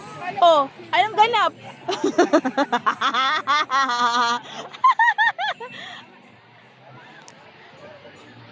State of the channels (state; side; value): identical; both; correlation 1.00